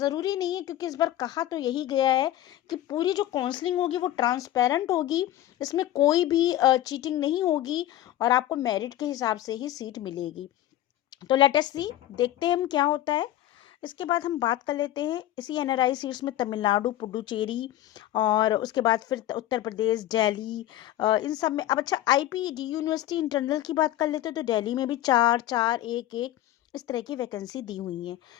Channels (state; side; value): quieter; right; 13.5 dB